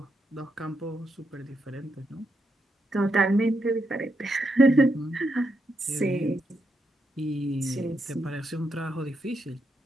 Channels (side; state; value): both; normal; correlation 0.82